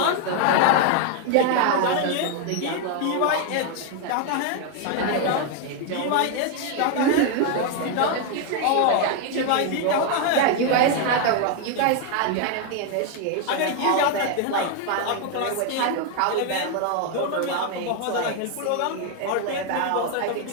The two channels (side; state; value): both; different; correlation 0.01